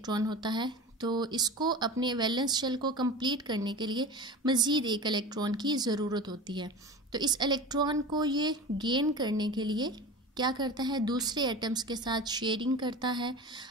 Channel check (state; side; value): normal; both; correlation 0.32